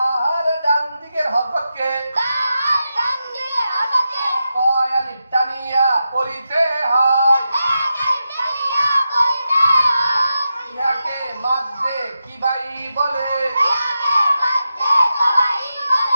ডান দিকের হরকতকে কয় আলিফ টানিয়া পড়িতে হয়, ইহাকে মাদ্দে কি বাই বলে।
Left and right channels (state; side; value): inverted; both; correlation -0.89